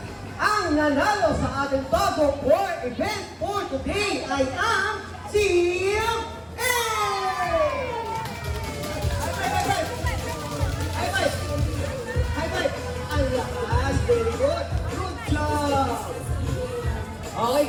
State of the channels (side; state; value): both; identical; correlation 1.00